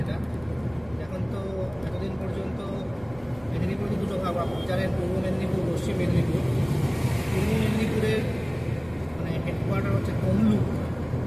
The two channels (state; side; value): noise; right; hum, 22 dB below the sound